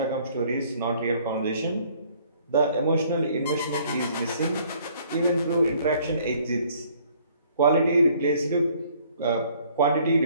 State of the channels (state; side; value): inverted; both; correlation -0.60